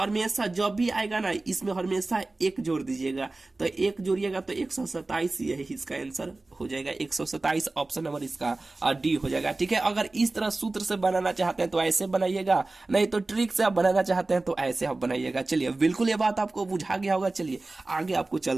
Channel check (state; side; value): quieter; left; 3.1 dB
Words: जब भी आएगा ना, इसमें हमेशा 1 जोड़ दीजिएगा। तो 1 जोड़िएगा तो 127, यही इसका आंसर हो जाएगा। 127 ऑप्शन नंबर इसका डी हो जाएगा। ठीक है, अगर इस तरह सूत्र से बनाना चाहते हैं तो ऐसे बनाइएगा, नहीं तो ट्रिक से आप बनाना चाहते हैं तो ऐसे आप बनाइएगा। चलिए बिल्कुल ये बात आपको बुझा गया होगा। चलिए आगे आपको